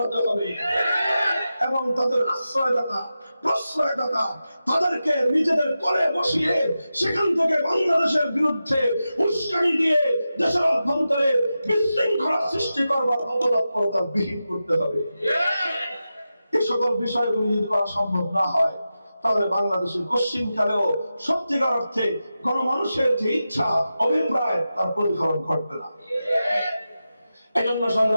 হবে এবং তাদের আশ্রয়দাতা, প্রশ্রয়দাতা তাদেরকে নিজেদের কোলে বসিয়ে সেখান থেকে বাংলাদেশের বিরুদ্ধে উস্কানি দিয়ে দেশের অভ্যন্তরে বিশৃঙ্খলা সৃষ্টি করবার অপতৎপরতা বিহীন করতে হবে। এই সকল বিষয়গুলি যদি করা সম্ভব না হয়, তাহলে বাংলাদেশের পশ্চিমকালেও সত্যিকার অর্থে গণমানুষের যে ইচ্ছা, অভিপ্রায়, তার প্রতিফলন ঘটবে না। এই জন্য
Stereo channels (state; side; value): inverted; both; correlation -0.92